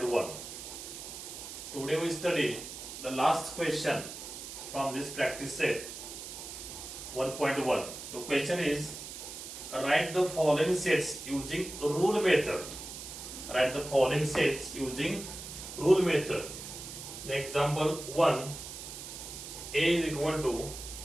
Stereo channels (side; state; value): right; noise; hiss, 10 dB below the sound